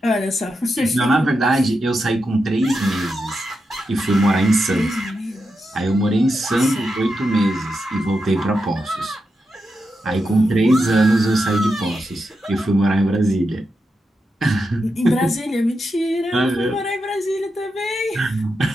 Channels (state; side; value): normal; both; correlation 0.87